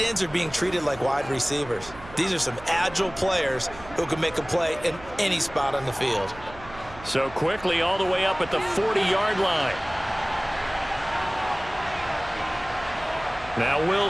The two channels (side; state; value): right; noise; hum, 18 dB below the sound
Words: ends are being treated like wide receivers. These are some agile players who can make a play in any spot on the field. So quickly all the way up at the 40-yard line. Now